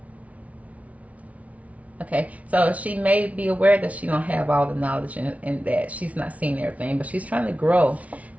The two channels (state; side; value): late; left; 0.068 ms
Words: Okay, so she may be aware that she don't have all the knowledge and that she's not seeing everything, but she's trying to grow,